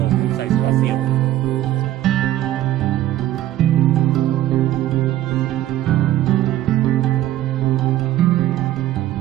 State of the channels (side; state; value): left; quieter; 13.7 dB